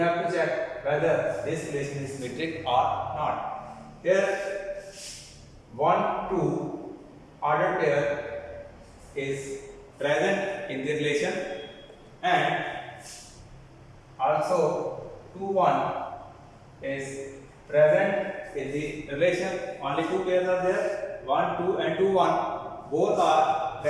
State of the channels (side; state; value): both; identical; correlation 1.00